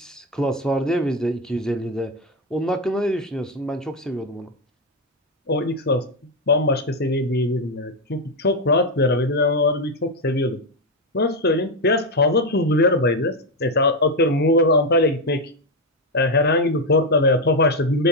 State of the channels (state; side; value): normal; both; correlation 0.06